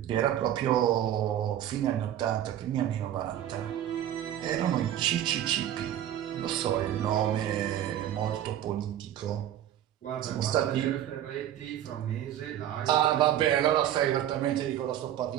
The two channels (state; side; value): quieter; left; 11.5 dB